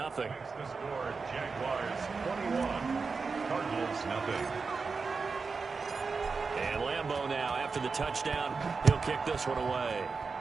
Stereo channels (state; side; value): quieter; left; 4.7 dB